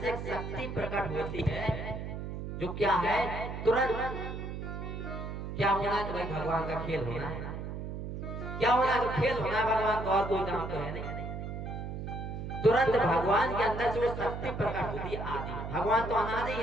से एक शक्ति प्रकट होती है, जो क्या है? तुरंत क्या होना है? तो भाई भगवान का खेल होना है। क्या होना है? तो खेल होना है भगवान का, और कोई काम तो है नहीं। तुरंत भगवान के अंदर से वो शक्ति प्रकट होती है आदि में। भगवान तो अनादि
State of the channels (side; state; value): right; noise; hum, 6 dB below the sound